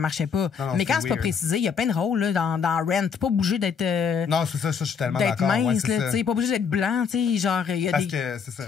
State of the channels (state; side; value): quieter; right; 6.5 dB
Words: pas. Non, non, mais c'est quand c'est pas weird. précisé, il y a plein de rôles, là, dans Rent. T'es pas obligé d'être... Non, c'est ça, je suis tellement d'être d'accord. Ouais, mince, c'est là, ça. tu sais, pas obligé d'être blanc, tu sais, genre, il y a Parce des... que c'est ça.